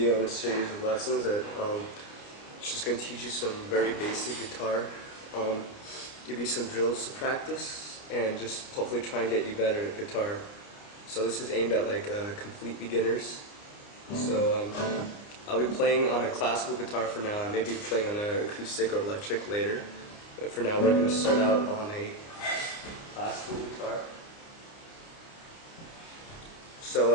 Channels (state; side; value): late; right; 29 ms